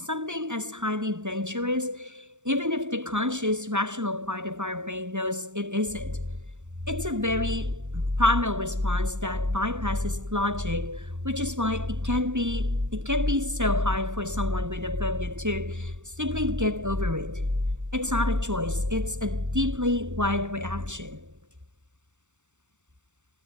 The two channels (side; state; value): left; late; 0.84 ms